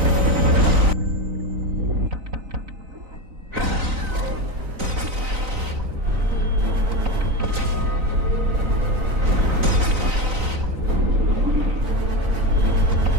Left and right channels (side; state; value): left; late; 3.9 ms